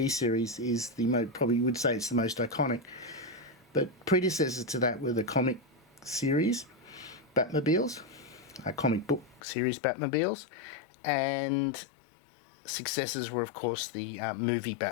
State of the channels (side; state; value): right; drops out; at 9.4 s